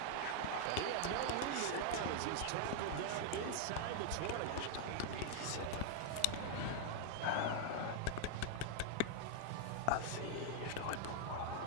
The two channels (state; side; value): different; both; correlation 0.00